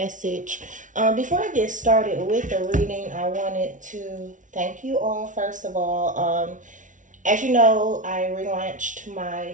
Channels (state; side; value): late; left; 0.37 ms